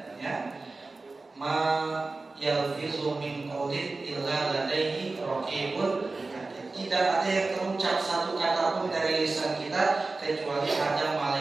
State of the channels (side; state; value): left; quieter; 3.5 dB